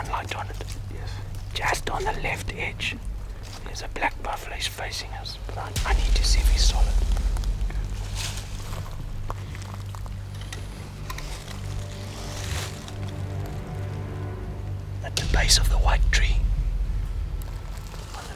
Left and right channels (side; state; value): both; identical; correlation 1.00